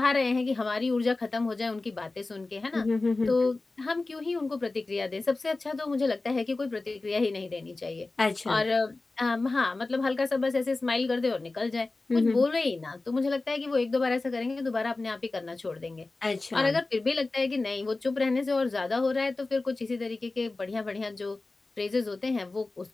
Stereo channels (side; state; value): right; quieter; 3.3 dB